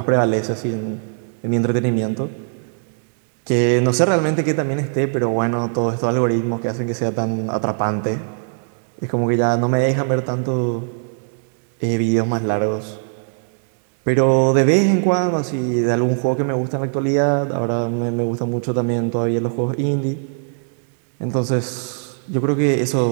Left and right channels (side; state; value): left; silent; 65 dB below the other